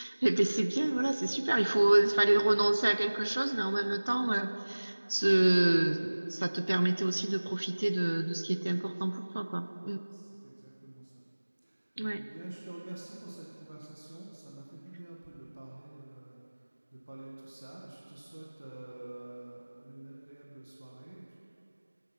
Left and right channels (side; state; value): both; inverted; correlation -1.00